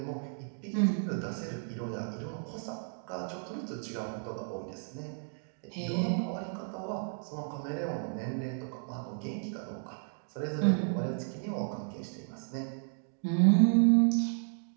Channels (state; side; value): silent; left; 56 dB below the other